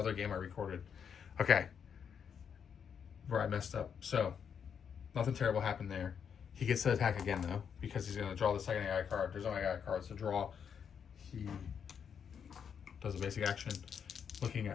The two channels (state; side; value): quieter; right; 7.4 dB